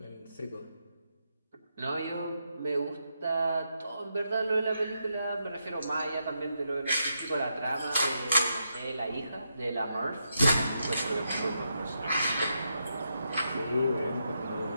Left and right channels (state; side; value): inverted; both; correlation -0.83